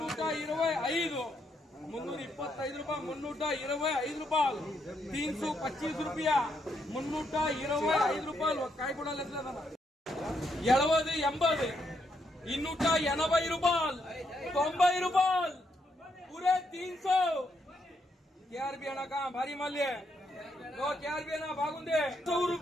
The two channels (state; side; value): normal; both; correlation 0.77